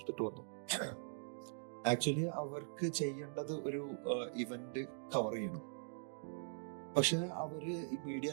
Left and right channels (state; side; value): silent; left; digital silence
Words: വന്നു. ആക്ച്വലി അവർക്ക് ചെയ്യേണ്ടത് ഒരു ഇവന്റ് കവർ ചെയ്യണം. പക്ഷെ അവര് ഈ മീഡിയ